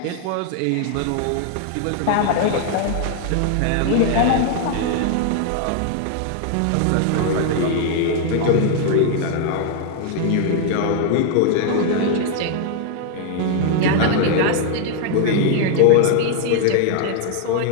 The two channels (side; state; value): both; different; correlation 0.00